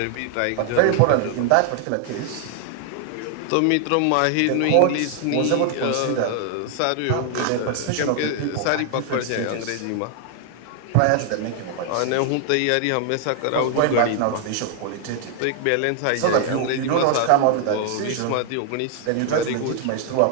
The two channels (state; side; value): different; both; correlation 0.00